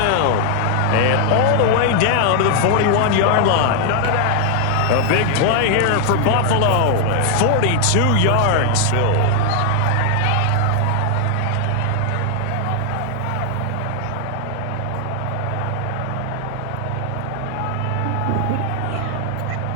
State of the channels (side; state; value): both; different; correlation 0.00